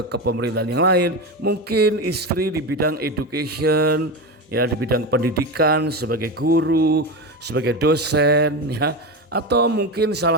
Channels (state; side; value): normal; both; correlation 0.19